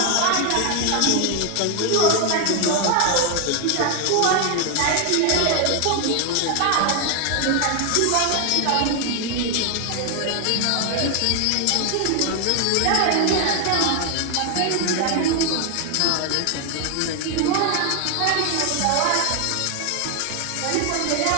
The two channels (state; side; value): different; both; correlation 0.00